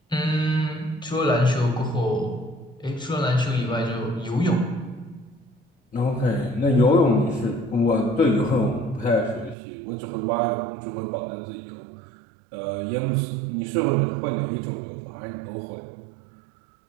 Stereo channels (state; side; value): drops out; left; at 9.6 s